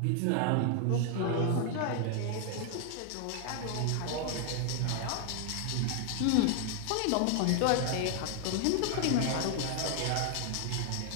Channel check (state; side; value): different; both; correlation 0.00